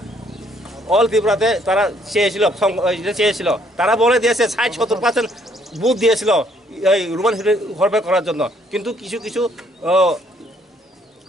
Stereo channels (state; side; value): normal; both; correlation 0.66